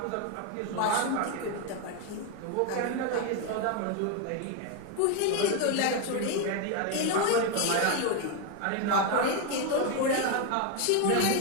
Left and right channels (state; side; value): different; both; correlation 0.01